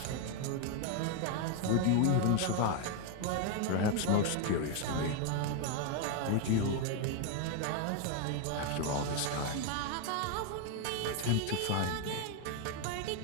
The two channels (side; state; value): both; different; correlation 0.01